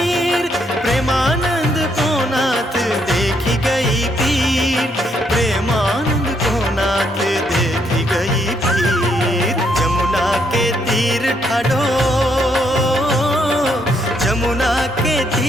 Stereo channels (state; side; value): normal; both; correlation 0.74